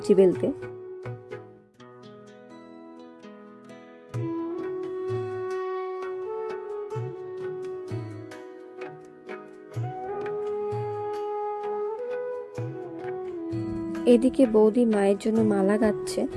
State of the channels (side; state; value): both; identical; correlation 1.00